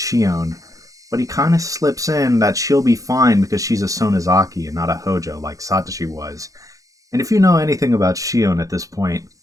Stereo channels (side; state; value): left; late; 0.16 ms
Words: but he kind of slips in that she'll be fine because she's a Sonozaki and not a Hojo like Satoshi was. And if you know anything about Shion at this point,